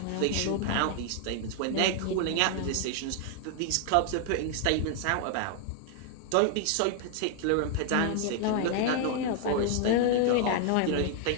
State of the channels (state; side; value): different; both; correlation 0.00